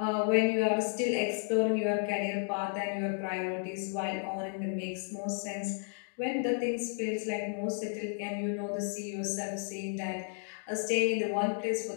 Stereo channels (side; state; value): right; silent; 56 dB below the other